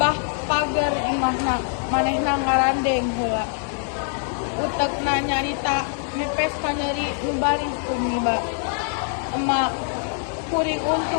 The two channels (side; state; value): right; silent; 61 dB below the other